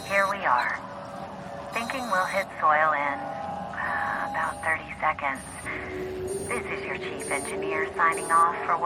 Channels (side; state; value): both; identical; correlation 1.00